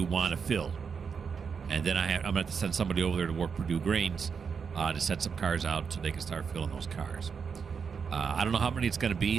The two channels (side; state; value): left; quieter; 6.1 dB